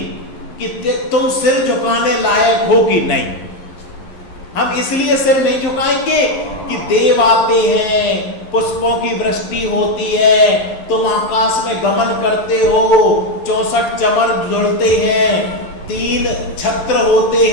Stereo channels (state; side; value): late; right; 11 ms